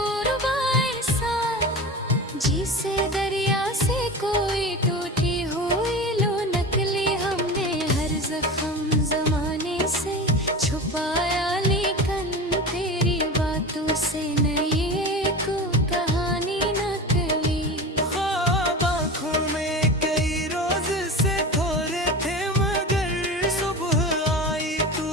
ऐसा, जिसे दरिया से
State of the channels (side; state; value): both; normal; correlation 0.30